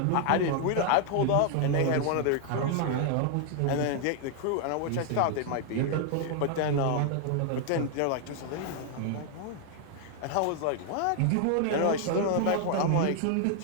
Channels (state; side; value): different; both; correlation 0.00